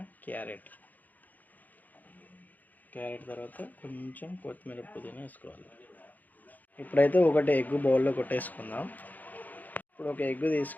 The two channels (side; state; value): right; late; 0.082 ms